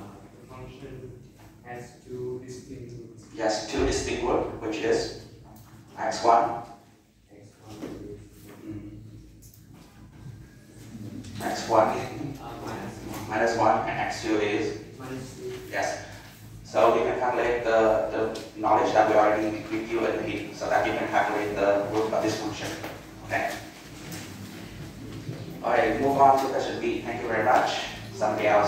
function has two distinct roots. Yes, two distinct roots, which is x1. X1 minus 1 and x2 is minus 2. Yes. So you can calculate the knowledge that we already reviewed in here, so that you can calculate the root of this function. Okay. Alright, move on to question B. Thank you very much. Somebody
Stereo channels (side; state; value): both; identical; correlation 1.00